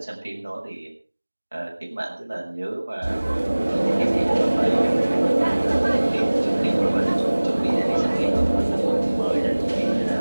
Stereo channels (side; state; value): both; inverted; correlation -1.00